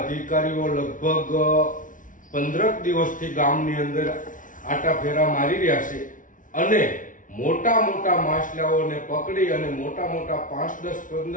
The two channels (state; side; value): late; right; 0.38 ms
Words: અધિકારીઓ લગભગ 15 દિવસથી ગામની અંદર આટા ફેરા મારી રહ્યા છે અને મોટા મોટા માછલાઓને પકડી અને મોટા 5, 10,